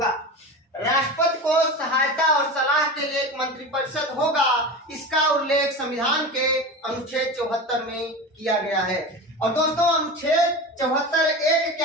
राष्ट्रपति को सहायता और सलाह के लिए एक मंत्री परिषद होगा। इसका उल्लेख संविधान के अनुच्छेद 74 में किया गया है। और दोस्तों अनुच्छेद 74(1)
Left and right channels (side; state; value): both; normal; correlation 0.28